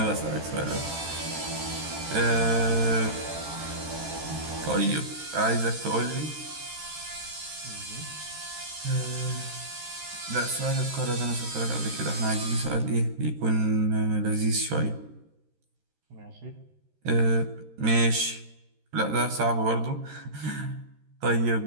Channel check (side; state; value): left; late; 13 ms